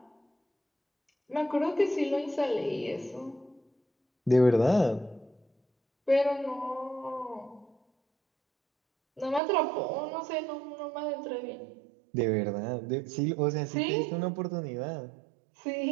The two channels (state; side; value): drops out; left; at 9.4 s